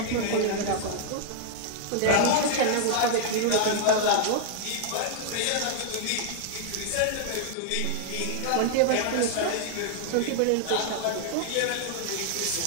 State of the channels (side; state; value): both; different; correlation 0.00